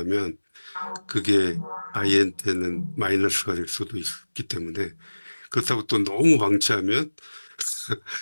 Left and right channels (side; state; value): both; inverted; correlation -1.00